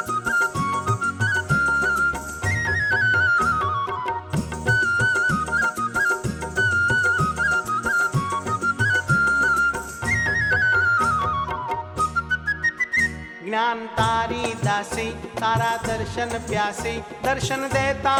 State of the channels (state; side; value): identical; both; correlation 1.00